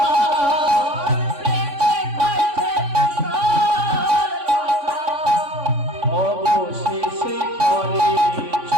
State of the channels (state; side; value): late; left; 3.5 ms